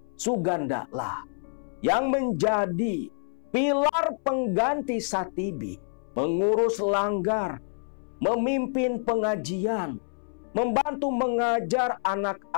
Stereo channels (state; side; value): silent; right; 60 dB below the other